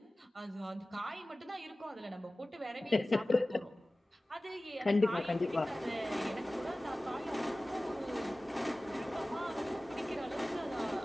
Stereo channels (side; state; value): both; normal; correlation 0.97